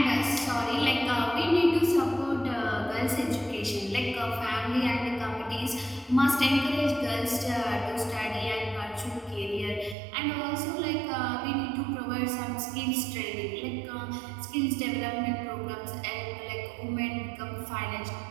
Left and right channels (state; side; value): drops out; left; at 10.0 s